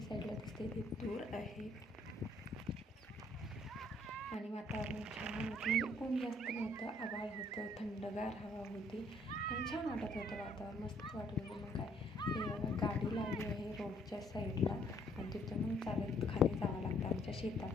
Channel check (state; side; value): normal; both; correlation 0.65